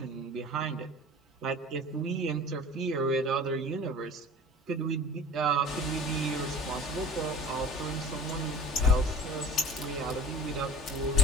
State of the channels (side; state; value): both; normal; correlation 0.39